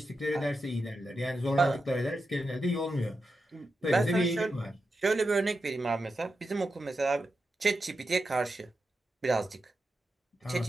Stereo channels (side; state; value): both; normal; correlation 0.88